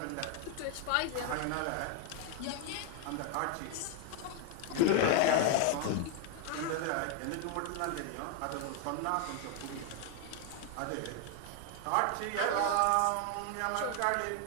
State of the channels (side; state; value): both; different; correlation 0.00